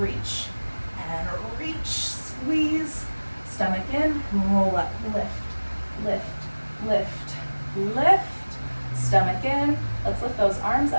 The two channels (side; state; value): both; inverted; correlation -1.00